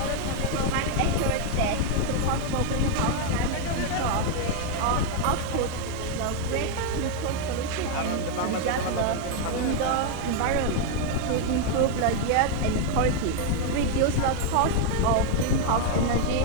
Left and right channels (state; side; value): different; both; correlation 0.00